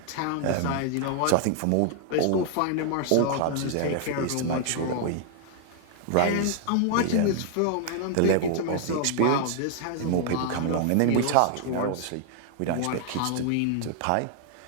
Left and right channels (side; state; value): both; different; correlation 0.00